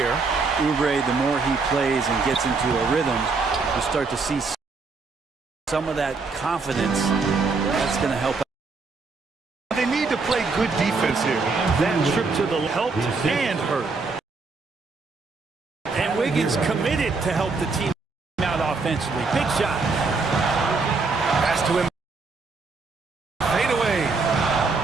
Oubre, the more he plays and gets into a rhythm, you start to see some of that confidence. That's going to help. They need to play good defense here. That trip to the helped and hurt. And Wiggins committed to help the team out offensively. Big shot. Pass to him. Fade away.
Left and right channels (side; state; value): left; quieter; 4.2 dB